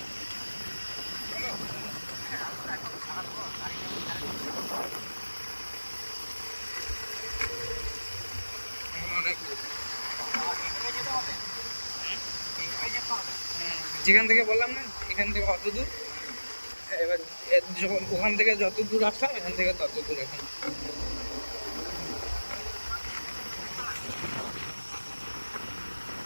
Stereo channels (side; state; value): both; inverted; correlation -1.00